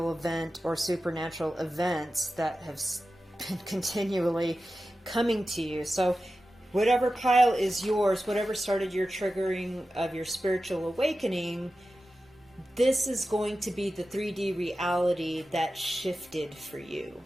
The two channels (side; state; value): both; normal; correlation 0.93